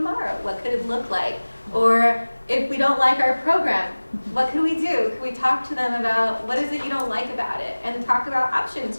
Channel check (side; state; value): both; inverted; correlation -1.00